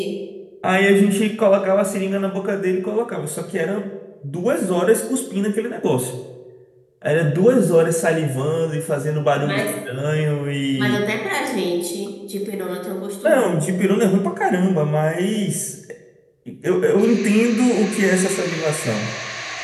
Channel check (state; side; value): identical; both; correlation 1.00